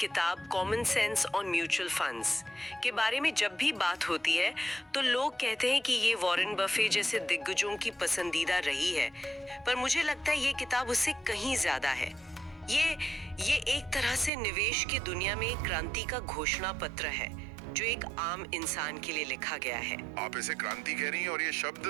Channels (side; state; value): left; drops out; at 14.3 s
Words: common sense on mutual funds के बारे में जब भी बात होती है तो लोग कहते हैं कि ये वॉरेन बफे जैसे दिग्गजों की पसंदीदा रही है, पर मुझे लगता है ये किताब उससे कहीं ज्यादा है। ये एक तरह से निवेश की दुनिया में एक क्रांति का घोषणा पत्र है जो एक आम इंसान के लिए लिखा गया है। आप इसे क्रांति कह रही हैं और ये शब्द